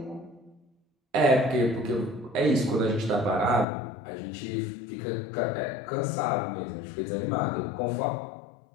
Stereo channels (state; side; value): drops out; right; at 3.7 s